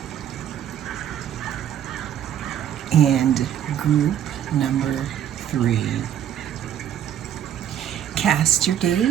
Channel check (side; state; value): left; quieter; 10.3 dB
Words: and group number 3. Cast your